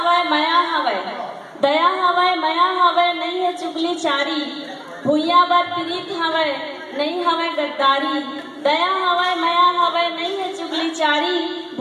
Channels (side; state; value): both; identical; correlation 1.00